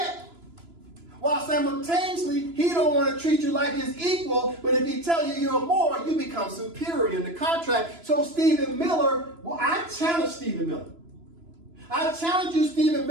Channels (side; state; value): left; late; 3.0 ms